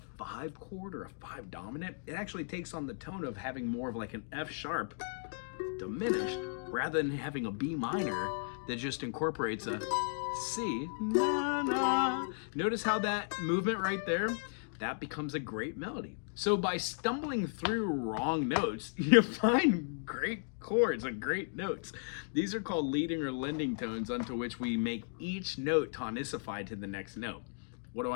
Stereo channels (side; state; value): right; silent; digital silence